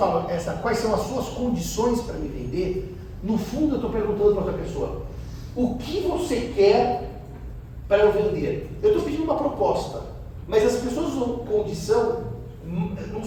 quais são as suas condições para me vender, no fundo eu estou perguntando para outra pessoa, o que você quer para eu vender? Eu estou pedindo uma proposta, mas as pessoas usam condição num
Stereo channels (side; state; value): both; identical; correlation 1.00